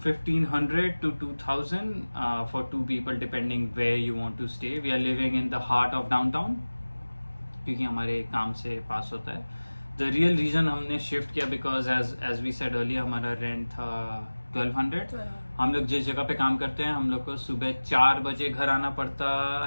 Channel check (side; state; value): both; inverted; correlation -1.00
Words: 1,500 to 2,000 for two people, depending where you want to stay. We are living in the heart of downtown क्योंकि हमारे काम से पास होता है. The real reason हमने शिफ्ट किया because as we said earlier, हमारा रेंट था 1,200. हम लोग जिस जगह पे काम करते हैं, हम लोग को सुबह 4 बजे घर आना पड़ता